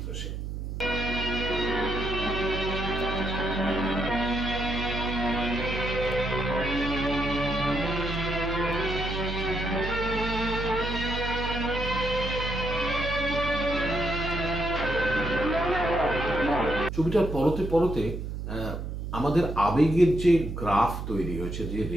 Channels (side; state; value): right; noise; hum, 5 dB below the sound